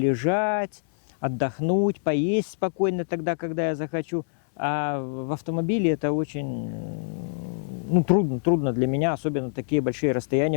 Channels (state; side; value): silent; right; digital silence